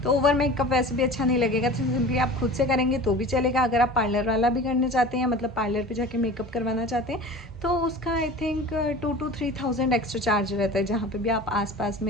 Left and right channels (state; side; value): normal; both; correlation 0.38